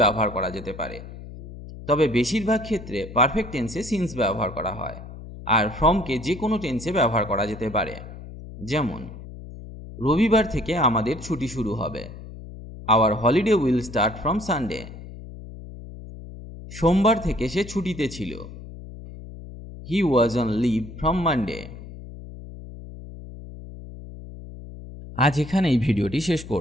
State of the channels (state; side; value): noise; left; hum, 14 dB below the sound